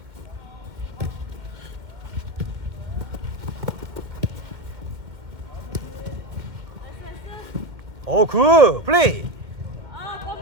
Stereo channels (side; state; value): left; late; 2.3 ms